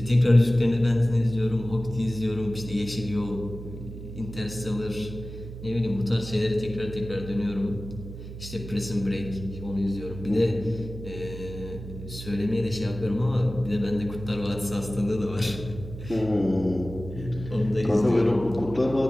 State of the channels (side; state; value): right; noise; hum, 11 dB below the sound